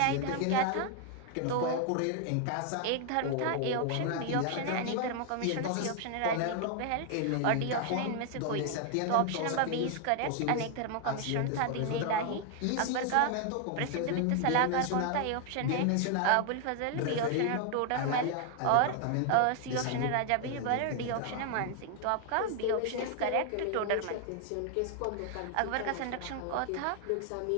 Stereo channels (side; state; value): both; different; correlation 0.00